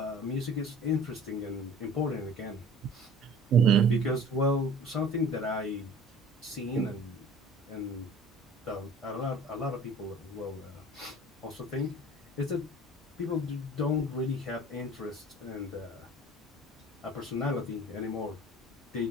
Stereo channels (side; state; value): both; normal; correlation 0.46